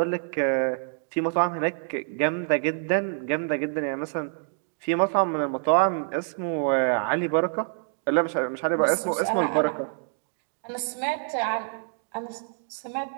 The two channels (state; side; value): silent; left; digital silence